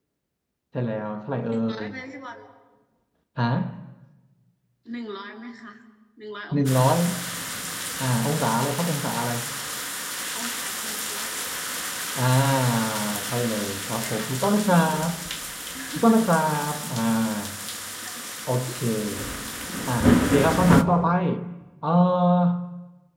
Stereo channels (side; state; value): both; identical; correlation 1.00